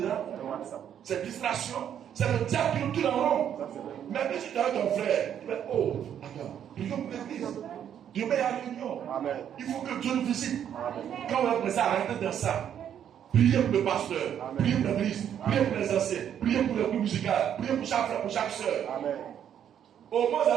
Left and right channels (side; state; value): left; quieter; 9.4 dB